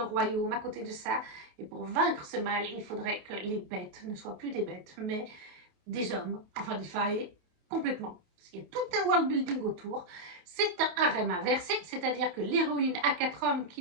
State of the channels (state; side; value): late; left; 28 ms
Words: royaume à côté de ça. Et pour vaincre ce mal, il faudrait que les bêtes ne soient plus des bêtes, mais des hommes, enfin des failles, complètement. Il y a tout un world building autour. C'est un harem inversé, c'est-à-dire que l'héroïne a 4 hommes